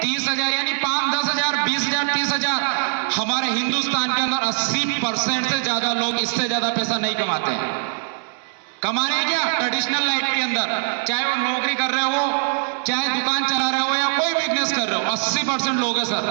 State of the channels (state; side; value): silent; left; 64 dB below the other